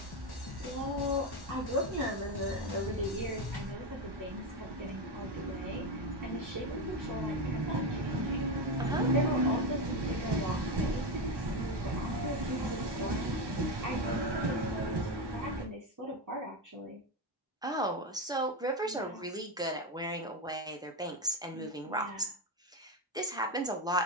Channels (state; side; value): normal; both; correlation 0.12